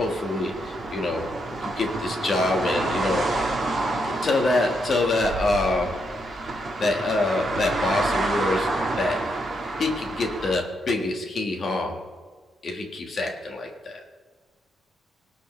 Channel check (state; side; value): normal; both; correlation 0.79